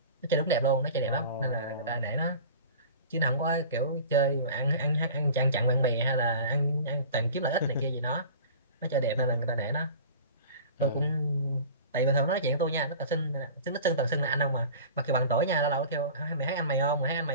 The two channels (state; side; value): inverted; both; correlation -0.40